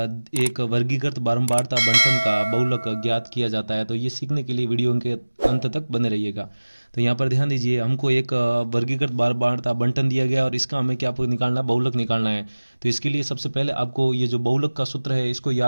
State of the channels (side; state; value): both; inverted; correlation -1.00